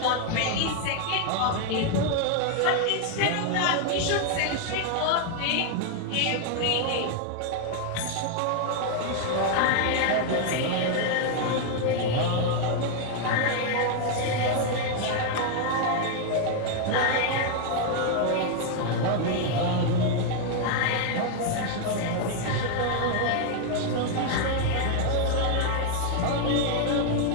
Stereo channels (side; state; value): both; different; correlation 0.00